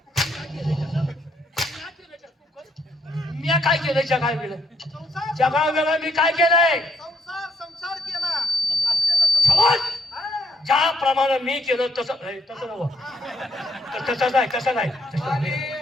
मी काय केलं? जगा गेलं. संसार जगा गेलं. मी काय केलंय? संसार केला. असं त्याचं संसार. समज. हा. ज्याप्रमाणे मी केलं तसं तसं नव्हं. तसं नाही. तसं नाही. आणि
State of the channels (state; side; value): normal; both; correlation 0.73